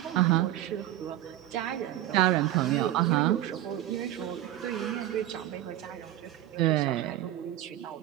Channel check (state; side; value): quieter; left; 13.6 dB